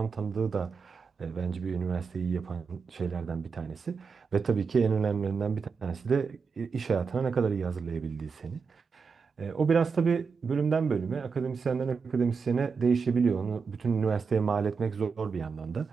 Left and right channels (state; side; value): quieter; left; 5.4 dB